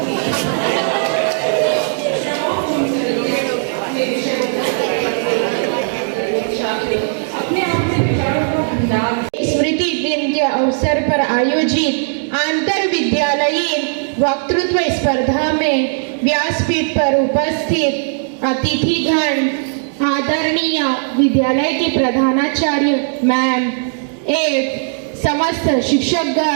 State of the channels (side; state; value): left; silent; digital silence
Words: स्मृति दिन के अवसर पर आयोजित अंतर विद्यालयीन वक्तृत्व स्पर्धा में व्यासपीठ पर उपस्थित अतिथिगण, आदरणीय विद्यालय के प्रधानाचार्य मैम एवं समस्त